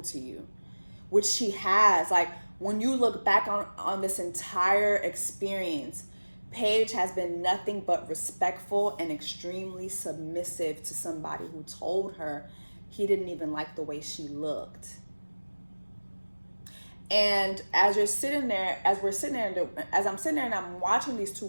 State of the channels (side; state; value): both; inverted; correlation -1.00